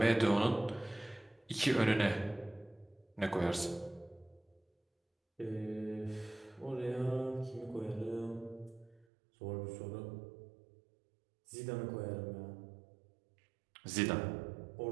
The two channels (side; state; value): left; drops out; at 9.1 s